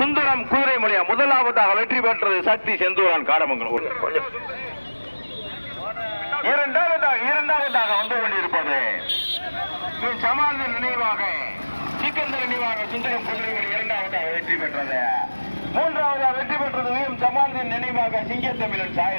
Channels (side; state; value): both; inverted; correlation -1.00